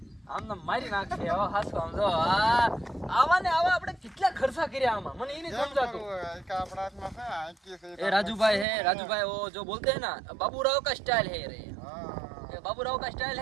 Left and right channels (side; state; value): left; drops out; at 8.7 s